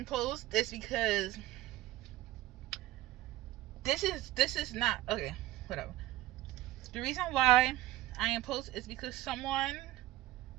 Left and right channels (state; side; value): quieter; left; 15.7 dB